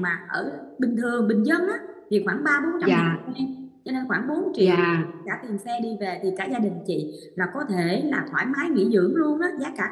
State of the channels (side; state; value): both; identical; correlation 1.00